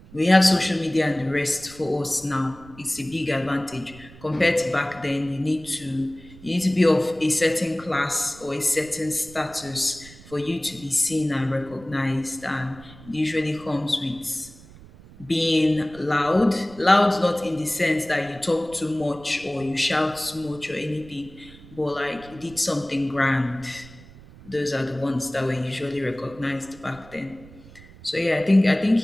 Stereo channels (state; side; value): noise; right; rumble, 21 dB below the sound